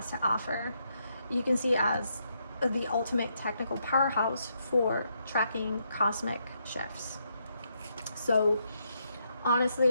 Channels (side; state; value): both; inverted; correlation -0.78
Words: to offer, you can see as the ultimate technical powerhouse for tracking cosmic shifts. So